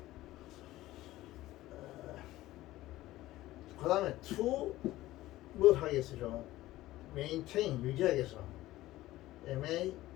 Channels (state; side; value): quieter; right; 16.4 dB